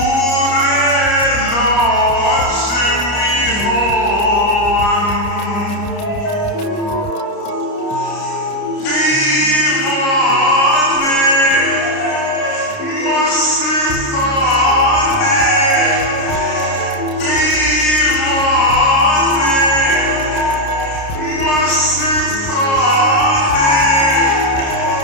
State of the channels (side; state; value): right; late; 29 ms